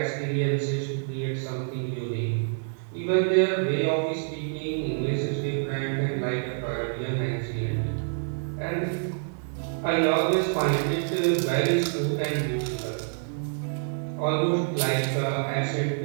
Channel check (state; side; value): silent; left; digital silence